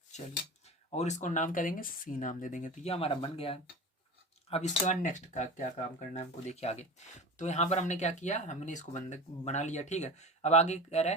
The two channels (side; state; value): both; normal; correlation 0.31